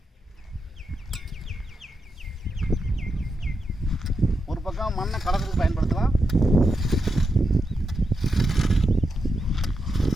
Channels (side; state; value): both; normal; correlation 0.86